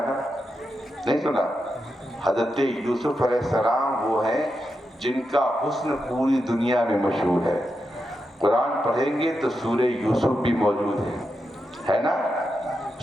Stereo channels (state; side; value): normal; both; correlation 0.87